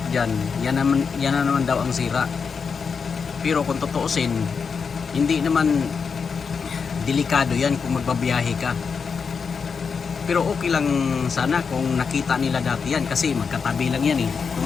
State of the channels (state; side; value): quieter; right; 5.7 dB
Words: dyan, yan na naman daw ang sira. Pero kung tutuusin, hindi naman delikado yan kung magbabiyahe ka. Pero okay lang sana kung nakita nila dati yan kasi magkatabi lang yan eh.